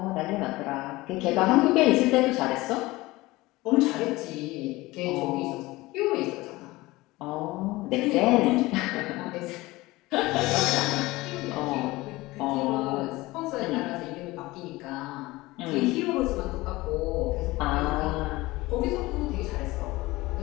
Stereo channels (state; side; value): quieter; right; 20.1 dB